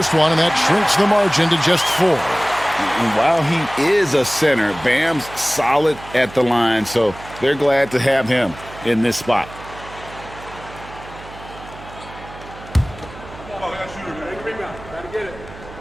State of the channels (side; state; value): right; noise; hum, 17 dB below the sound